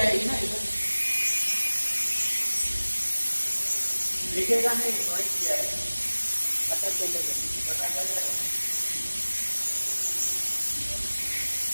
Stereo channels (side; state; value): both; inverted; correlation -1.00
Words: ना इधर, दिखेगा नहीं वही किया है, पता चलेगा, पता चलेगा।